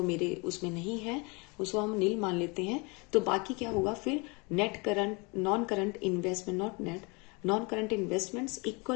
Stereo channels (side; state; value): right; quieter; 29.5 dB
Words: मेरे उसमें नहीं है, उसको हम नील मान लेते हैं। तो बाकी क्या होगा फिर, net current non current investment, not net, non current investments